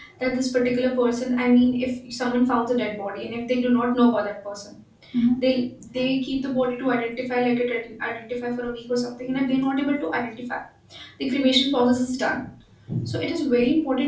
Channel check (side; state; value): both; identical; correlation 1.00